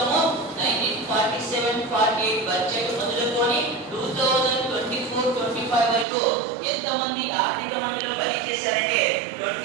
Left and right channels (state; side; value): drops out; left; at 6.1 s